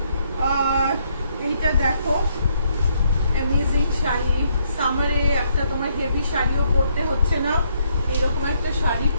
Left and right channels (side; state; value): both; inverted; correlation -0.71